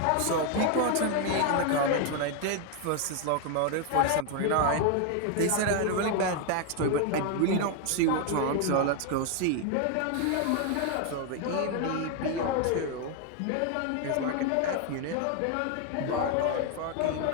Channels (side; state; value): both; different; correlation 0.01